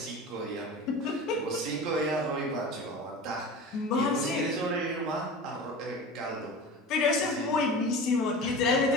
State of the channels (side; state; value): both; normal; correlation 0.33